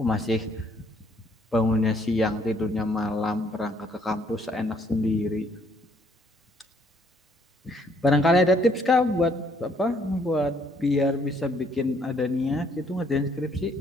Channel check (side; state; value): both; normal; correlation 0.66